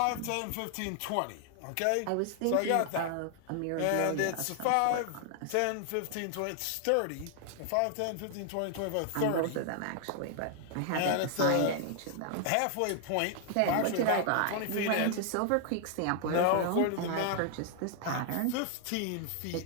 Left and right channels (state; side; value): different; both; correlation 0.00